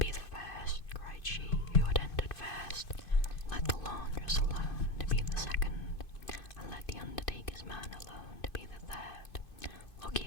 the first," cried she, who had entered first. "Let the laundress alone to be the second, and let the undertaker's man alone to be the third. Look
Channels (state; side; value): late; right; 2.5 ms